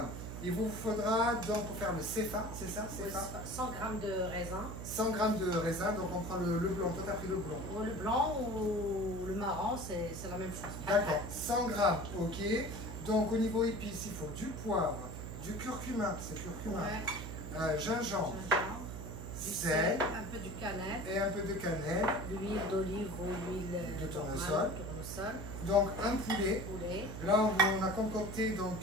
Il vous faudra, donc pour faire le Sefa, c'est ça, Oui, Sefa 100 grammes de raisin. 100 grammes de raisin, donc on prend le blanc. Toi, t'as pris le blanc. Ou le blanc ou le marron, c'est la même chose. D'accord, 100 grammes, ok. Donc au niveau épices, il faut du poivre, du curcuma, c'est curcuma, Ouais. gingembre, Gingembre, du sel un peu du cannelle, et un peu de cannelle. l'huile d'olive ou l'huile De tournesol. tournesol, Donc un poulet. poulet. Là, on a concocté donc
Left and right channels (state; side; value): noise; right; hum, 8 dB below the sound